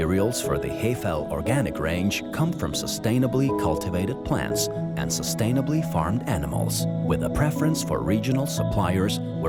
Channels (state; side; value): identical; both; correlation 1.00